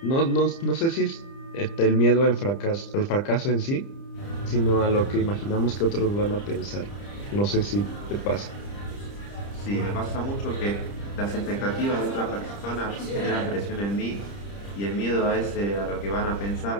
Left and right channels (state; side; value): late; right; 30 ms